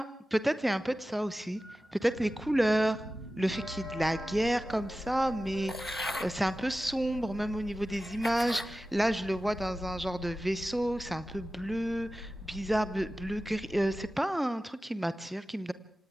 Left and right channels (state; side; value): normal; both; correlation 0.95